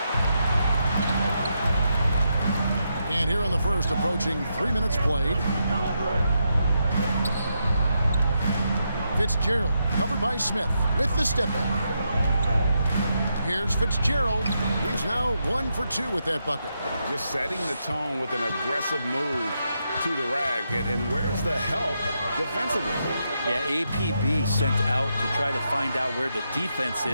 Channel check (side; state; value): both; inverted; correlation -0.83